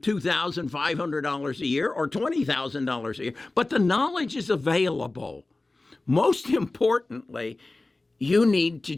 a year or $20,000 a year. But the knowledge is available. Most importantly, you need to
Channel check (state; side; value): quieter; right; 3.1 dB